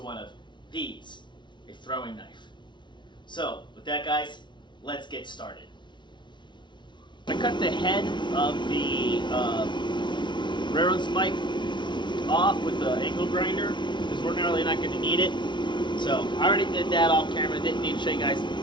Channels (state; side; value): late; right; 0.23 ms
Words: one of these, a throwing knife. So, with that guys, let's get started. I cut the head of the railroad spike off with the angle grinder, because we're really not going to need it. So, I already did that off camera, didn't need to show you guys